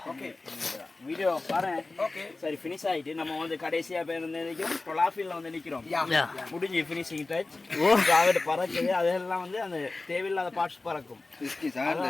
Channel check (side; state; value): right; quieter; 3.4 dB